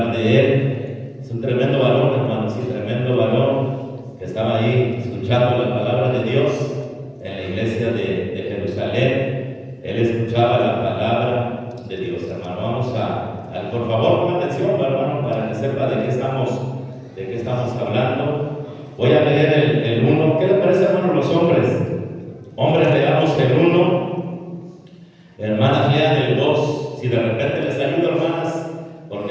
de él. Es un tremendo varón, hermano, sí, tremendo varón que estaba ahí escuchando la palabra de Dios en la iglesia de Jerusalén. Él escuchaba la palabra de Dios, hermano. Vamos a por favor, pongan atención, hermano, para que sepa de qué estamos hablando. Voy a leer el 1. ¿Qué les parece, hermano, los hombres? Hombres, leamos el 1. Hermanas, lean el 2. Si de repente les ayudo, hermanas,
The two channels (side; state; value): both; identical; correlation 1.00